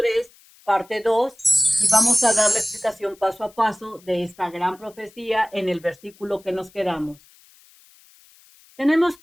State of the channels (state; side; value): noise; left; hiss, 28 dB below the sound